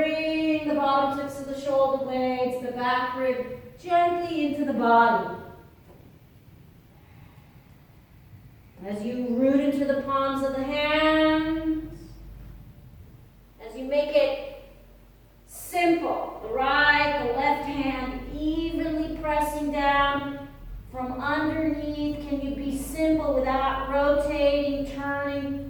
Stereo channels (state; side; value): identical; both; correlation 1.00